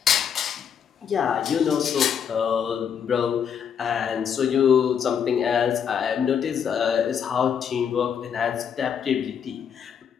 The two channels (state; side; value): quieter; right; 7.8 dB